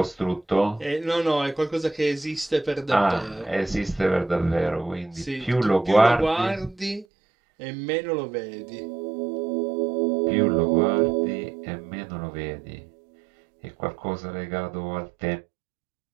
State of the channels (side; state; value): left; drops out; at 7.1 s